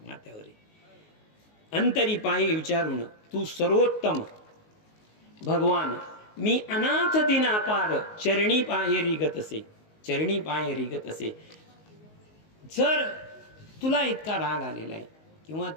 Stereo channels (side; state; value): right; late; 19 ms